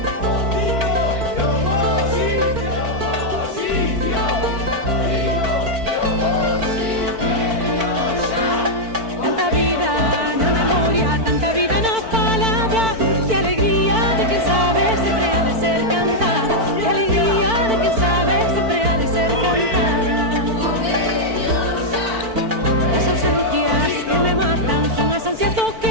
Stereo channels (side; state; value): left; late; 4.5 ms